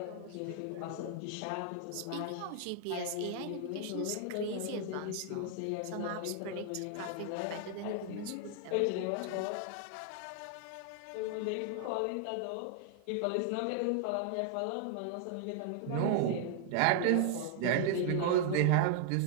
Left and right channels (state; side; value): different; both; correlation 0.00